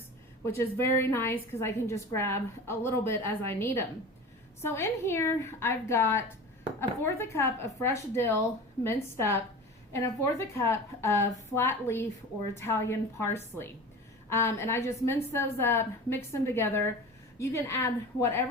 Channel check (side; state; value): both; normal; correlation 0.34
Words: which is very nice because I can just grab a little bit as I need them. So in here, I've got 1/4 cup of fresh dill minced up and 1/4 cup of flat leaf or Italian parsley. And I just mince those up, mix them together. You can add